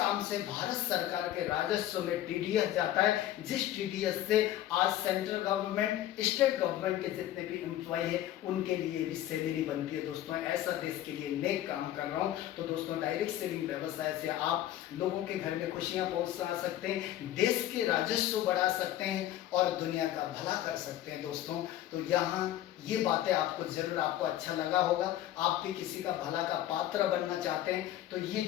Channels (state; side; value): quieter; right; 13.0 dB